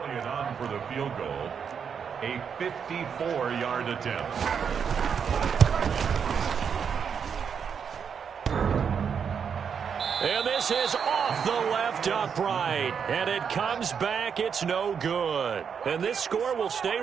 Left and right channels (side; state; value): left; quieter; 7.0 dB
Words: on for the field goal. A 54-yard attempt. And this is off the left upright. And it comes back. It's no good. And this score will stay